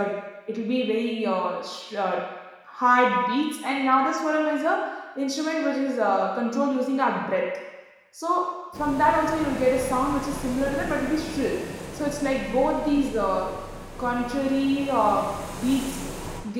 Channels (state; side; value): identical; both; correlation 1.00